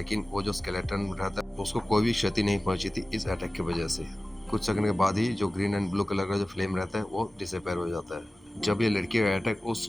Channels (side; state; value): both; normal; correlation 0.96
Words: वो जो स्केलेटन रहता है उसको कोई भी क्षति नहीं पहुंची थी इस अटैक की वजह से। कुछ सेकंड के बाद ही जो ग्रीन एंड ब्लू कलर का जो फ्लेम रहता है वो डिसअपेयर हो जाता है। जब ये लड़की का अटैक उस